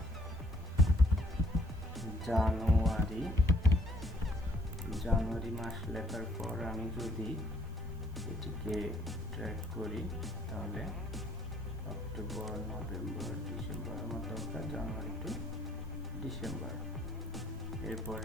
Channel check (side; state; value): both; normal; correlation 0.62